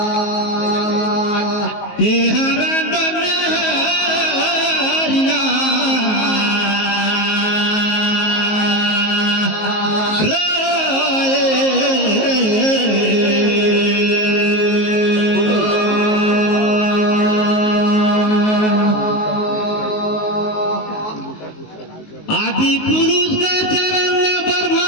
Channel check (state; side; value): late; right; 19 ms